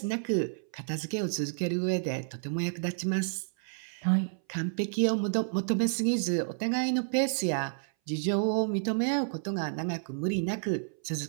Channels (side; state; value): left; silent; 58 dB below the other